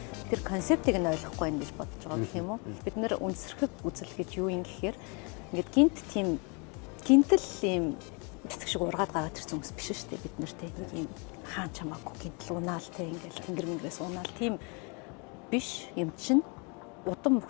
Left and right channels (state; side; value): quieter; right; 33.3 dB